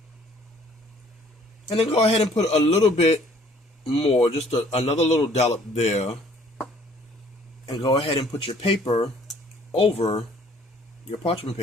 And then go ahead and put a little bit more, just another little dollop there. And go ahead and put your paper over, your parchment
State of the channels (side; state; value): both; normal; correlation 0.58